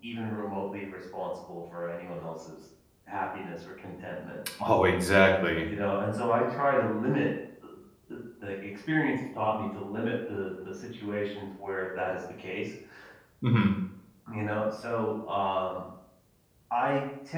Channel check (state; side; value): identical; both; correlation 1.00